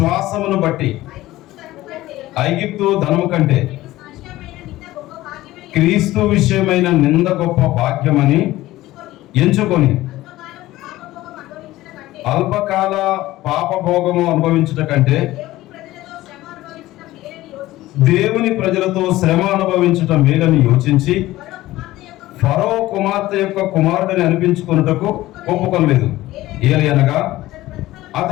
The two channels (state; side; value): quieter; right; 16.6 dB